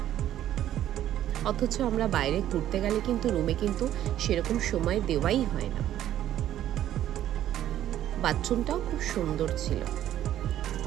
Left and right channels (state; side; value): quieter; left; 12.0 dB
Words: অথচ আমরা বাইরে ঘুরতে গেলে কিন্তু রুমে কিন্তু সেরকম সময় দেওয়াই হয় না। বাথরুমটাও খুব সুন্দর ছিল।